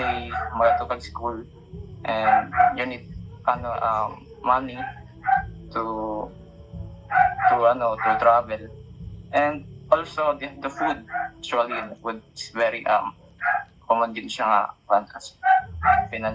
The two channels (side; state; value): both; identical; correlation 1.00